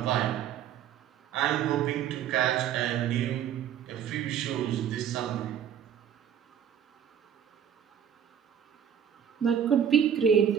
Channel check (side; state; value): left; quieter; 9.0 dB